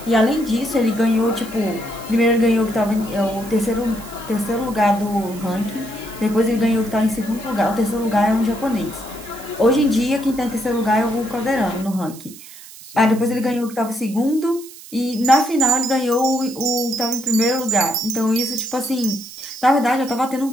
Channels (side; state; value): right; noise; hiss, 17 dB below the sound